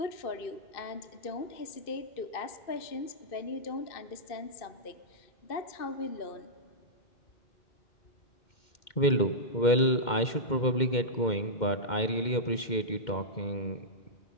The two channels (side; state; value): right; late; 2.1 ms